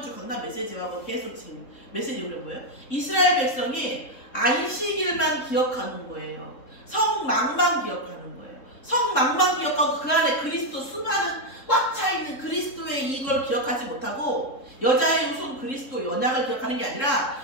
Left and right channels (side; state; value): right; late; 3.7 ms